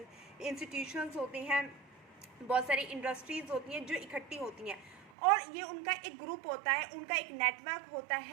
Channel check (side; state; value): left; drops out; at 5.1 s